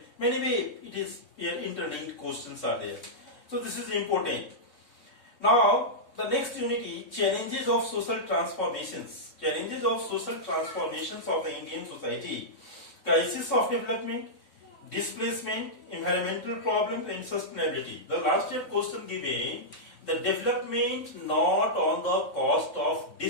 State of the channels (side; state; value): right; late; 3.6 ms